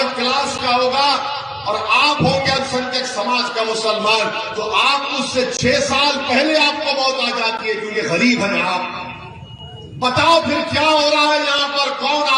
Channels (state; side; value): identical; both; correlation 1.00